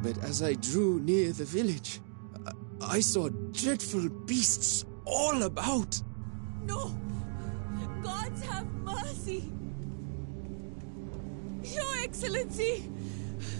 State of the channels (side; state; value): left; silent; 54 dB below the other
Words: But as I drew near the village, I saw dreadful beasts all about. No! Gods have mercy! Your Excellency!